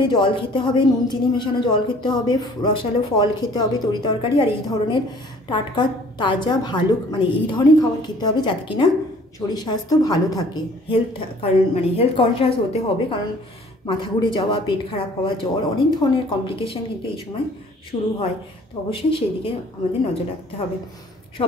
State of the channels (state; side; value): normal; both; correlation 0.54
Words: জল খেতে হবে, নুন চিনি মেশানো জল খেতে হবে, রসালো ফল খেতে হবে, তরকারি আর এই ধরনের টাটকা তাজা ভালো মানে এই ধরনের খাবার খেতে হবে, যাতে কিনা শরীর স্বাস্থ্য ভালো থাকে, হেলথ কনসিয়াস হতে হবে, কারণ মাথা ঘুরে যাওয়া, পেট খারাপ হওয়া, জ্বর, অনেক ধরনের কমপ্লিকেশান কিন্তু এই সময় শুরু হয়। তো অবশ্যই সেই দিকে আমাদের নজর রাখতে হবে।